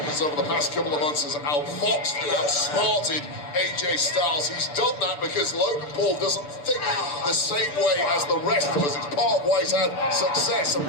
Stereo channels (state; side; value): late; right; 6.8 ms